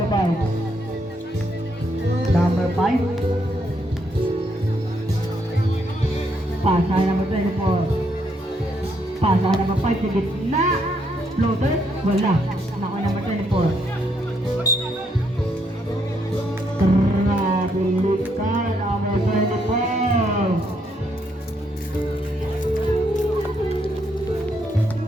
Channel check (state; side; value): normal; both; correlation 0.74